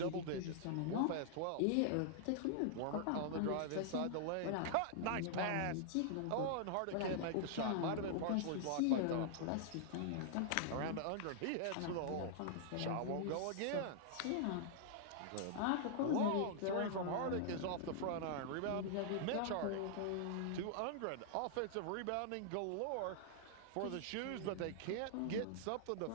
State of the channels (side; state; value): both; different; correlation -0.01